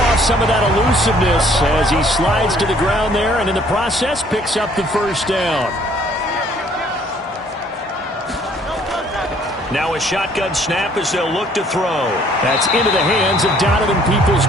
some of that elusiveness as he slides to the ground there, and in the process picks up the first down. Now a shotgun snap as they'll look to throw. That's into the hands of Donovan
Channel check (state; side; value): normal; both; correlation 0.60